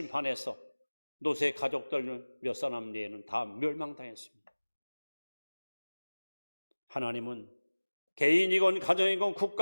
노세 가족들 몇 사람 내에는 다 멸망당했습니다. 하나님은 개인이건 가정이건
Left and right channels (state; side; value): inverted; both; correlation -1.00